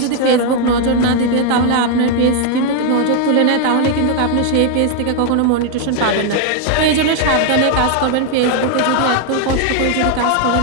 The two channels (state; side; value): different; both; correlation 0.01